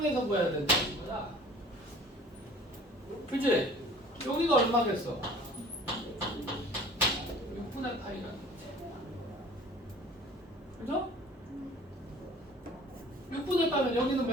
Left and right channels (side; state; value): both; normal; correlation 0.48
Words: 보여야 된다는 거야. 그치? 여기가 얼마겠어? 6분의 파이라는 거지. 그죠? 6분의 파이면 여기는